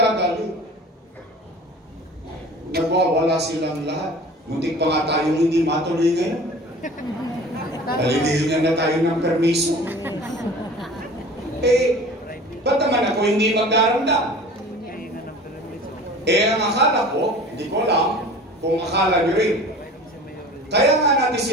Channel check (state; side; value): normal; both; correlation 0.41